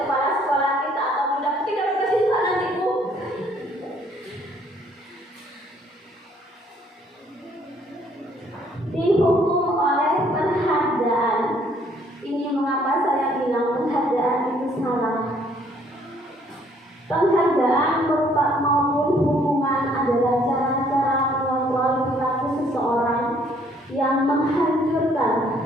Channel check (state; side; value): normal; both; correlation 0.63